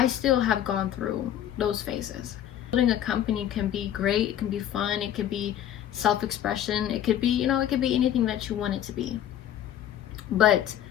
still have gone through those phases. Building a company can be great, it can be fun, it could be self-expression, it could be, it could be anything that you want it to be. But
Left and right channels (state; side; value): quieter; right; 11.0 dB